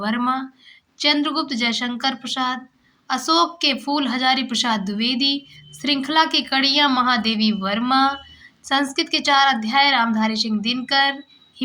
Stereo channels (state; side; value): identical; both; correlation 1.00